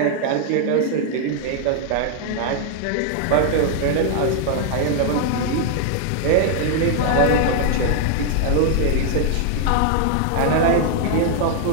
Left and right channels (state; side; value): different; both; correlation 0.00